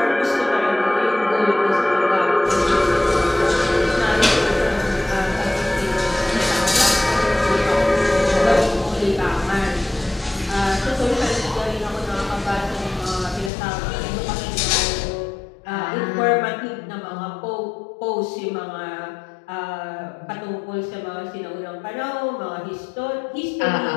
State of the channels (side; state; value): right; drops out; at 13.5 s